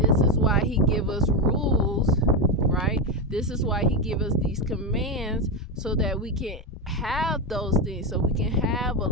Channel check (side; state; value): both; normal; correlation 0.11